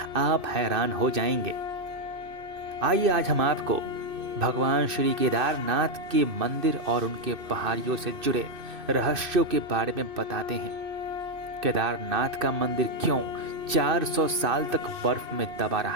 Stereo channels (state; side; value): late; left; 2.6 ms